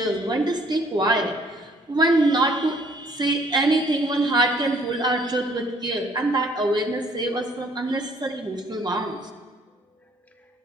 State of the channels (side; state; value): both; normal; correlation 0.61